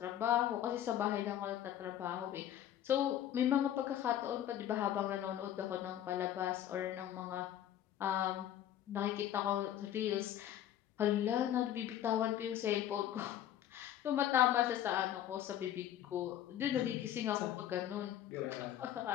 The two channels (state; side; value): quieter; right; 11.4 dB